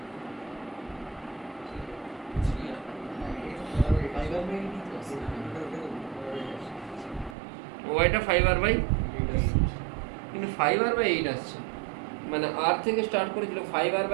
ওয়াইটা 5r/, কিন্তু 5r/8 আসছে, মানে r থেকে স্টার্ট করেছিল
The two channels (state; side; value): drops out; left; at 7.4 s